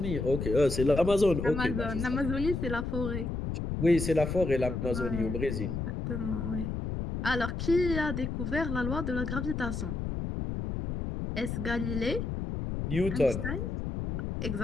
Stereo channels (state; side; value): noise; left; rumble, 3 dB below the sound